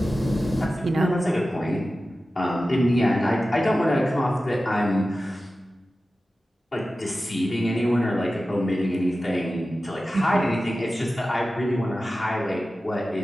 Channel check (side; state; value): both; normal; correlation 0.94